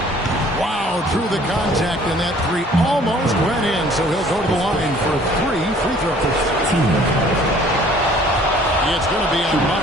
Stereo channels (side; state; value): both; normal; correlation 0.54